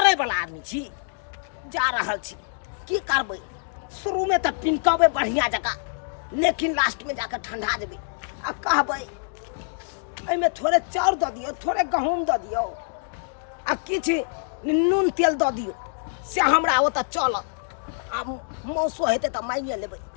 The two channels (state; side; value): silent; right; digital silence